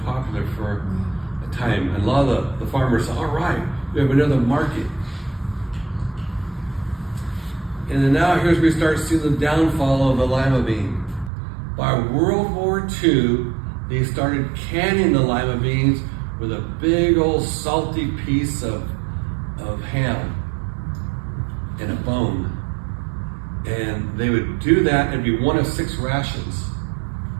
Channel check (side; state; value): left; drops out; at 11.3 s